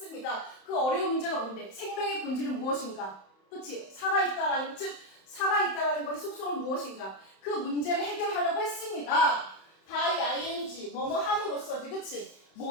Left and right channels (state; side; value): late; right; 31 ms